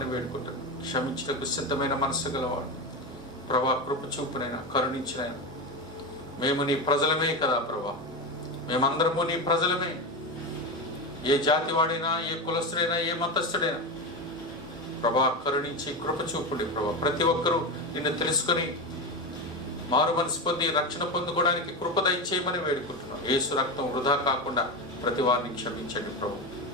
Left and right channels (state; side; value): normal; both; correlation 0.18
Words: వేడుకుంటున్నాం. క్షమించటకు సిద్ధమైన మనసు గలవాడు ప్రభా. కృప చూపునైనా, కరుణించినైనా. మేము నీ ప్రజలమే కదా ప్రభా. మేమందరము నీ ప్రజలమే. ఏ జాతి వాడైనా, ఏ కులస్తుడైనా, ఏ మతస్థుడైనా ప్రభా కరుణించి కృప చూపుడి ప్రభా. ప్రతి ఒక్కరూ నిన్ను తెలుసుకొని మారు మనసు పొంది రక్షణ పొందుకోవడానికి కృప దయచేయమని వేడుకుంటున్నాం. యేసు రక్తం వృధా కాకుండా ప్రతి వారిని క్షమించండి ప్రభు.